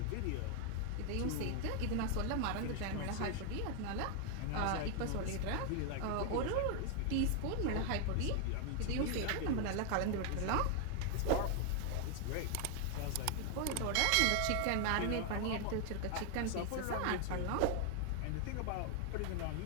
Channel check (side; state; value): both; different; correlation 0.00